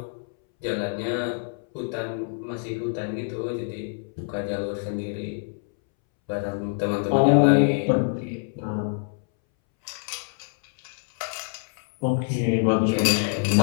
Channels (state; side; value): silent; right; 61 dB below the other